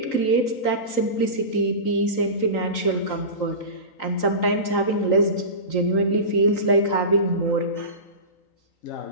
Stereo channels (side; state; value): right; late; 3.9 ms